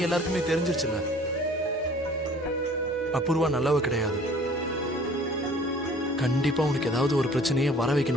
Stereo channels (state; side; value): normal; both; correlation 0.51